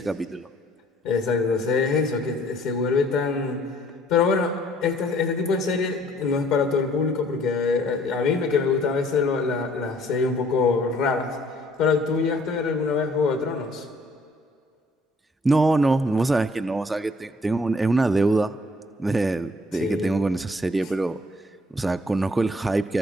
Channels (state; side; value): normal; both; correlation 0.60